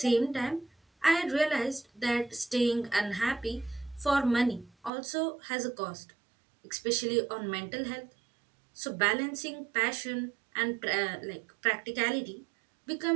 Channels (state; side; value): drops out; left; at 4.9 s